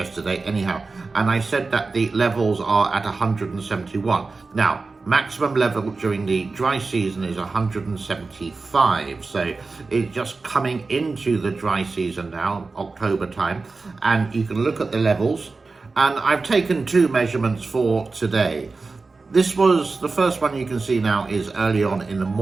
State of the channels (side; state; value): left; quieter; 4.0 dB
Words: anyhow, and I said that the levels are at 171. Now, maximum level during the dry season is 175, so it's just coming into the dry season now, October time, and you can look at the levels, and I've taken two measurements for today. This was, the first one you can see now is early on in the